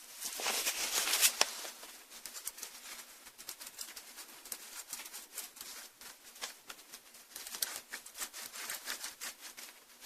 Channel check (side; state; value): both; identical; correlation 1.00